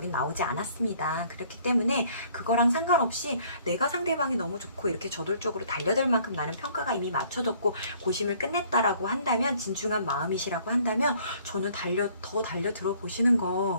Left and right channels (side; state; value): both; inverted; correlation -0.59